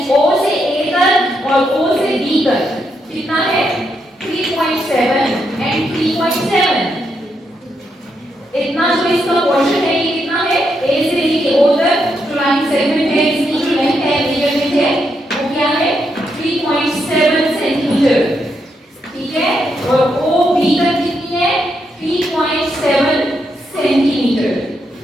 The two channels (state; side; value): normal; both; correlation 0.80